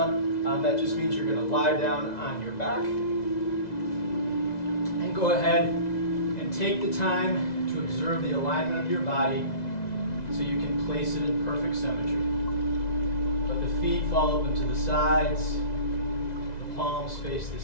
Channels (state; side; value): late; right; 2.0 ms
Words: That just means you're going to lie down on your back. And go ahead and take the time to observe the alignment of your body so you can place it in perfect symmetry. Let the feet fall open to the sides, the palms face the